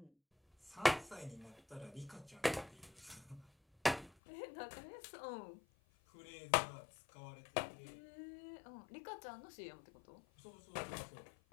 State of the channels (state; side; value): drops out; right; at 4.1 s